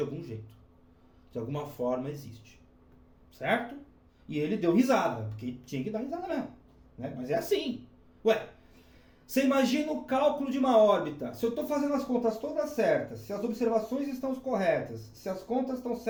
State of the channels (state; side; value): identical; both; correlation 1.00